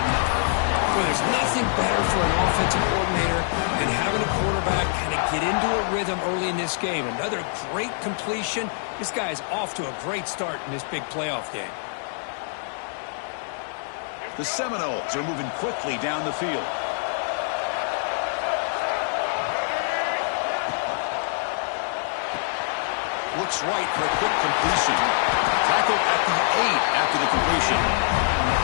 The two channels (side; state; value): right; silent; digital silence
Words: Well, there's nothing better for an offensive coordinator than having a quarterback kind of get into a rhythm early in this game. Another great completion. This guy is off to a great start in this big playoff game. The Seminoles are moving quickly down the field. Looks right for a quick completion. Tackled at the 8 after the completion.